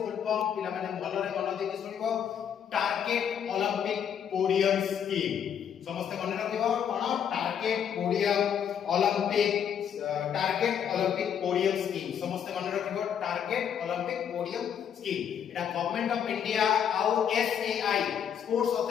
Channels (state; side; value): quieter; right; 8.4 dB